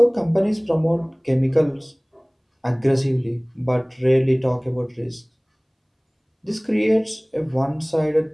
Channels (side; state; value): both; identical; correlation 1.00